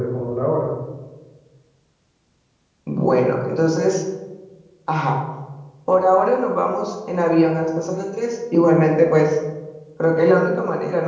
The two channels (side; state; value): both; identical; correlation 1.00